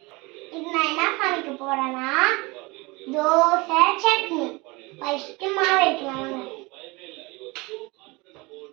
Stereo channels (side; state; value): left; quieter; 24.7 dB